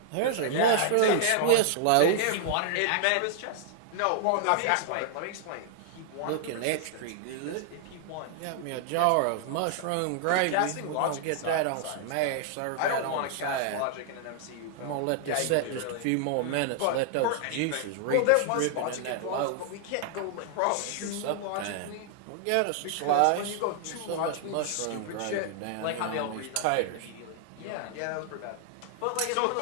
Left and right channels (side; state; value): both; different; correlation -0.01